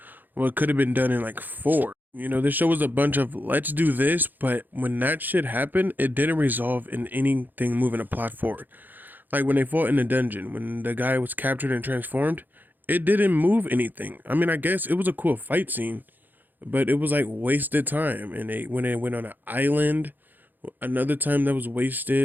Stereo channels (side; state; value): left; late; 0.087 ms